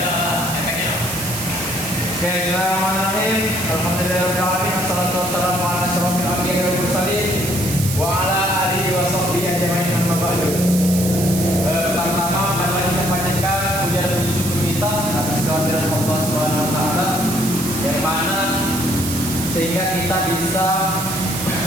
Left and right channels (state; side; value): noise; right; hiss, 6 dB below the sound